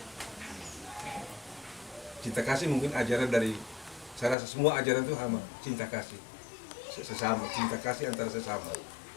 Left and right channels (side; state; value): right; drops out; at 4.4 s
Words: Cinta kasih mungkin ajaran dari, saya rasa semua ajaran itu sama, cinta kasih sesama, cinta kasih antara sesama.